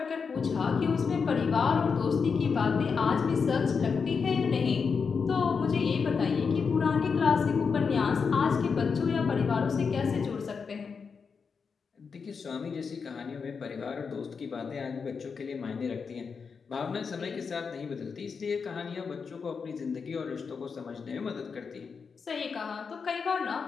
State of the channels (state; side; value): quieter; right; 5.6 dB